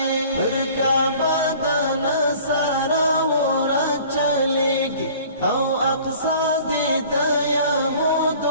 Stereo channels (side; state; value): both; inverted; correlation -0.48